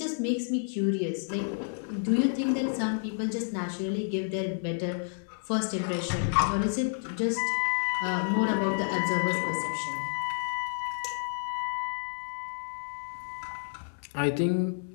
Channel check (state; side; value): silent; right; 58 dB below the other